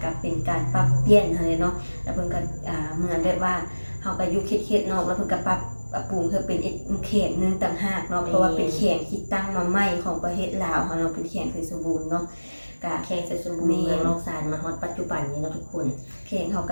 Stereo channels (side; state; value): both; inverted; correlation -1.00